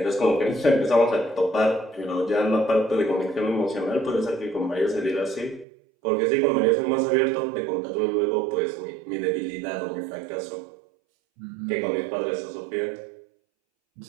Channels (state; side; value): drops out; left; at 5.7 s